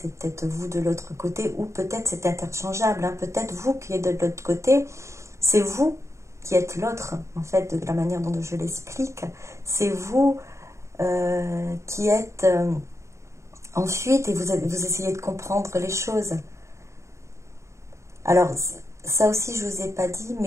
peut-être vous de l'autre côté, ou peut-être c'est interchangeable, hein, peut-être vous qui êtes de l'autre côté, c'est vous qui êtes l'autre, en fait, de la manière dont je l'explique, c'est vous qui êtes en fuite et vous essayez de comprendre les choses. Alors, ça aussi, je ne vous ai pas dit,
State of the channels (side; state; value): left; late; 0.14 ms